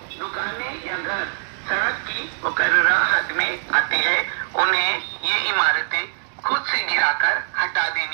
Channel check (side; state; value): left; silent; 64 dB below the other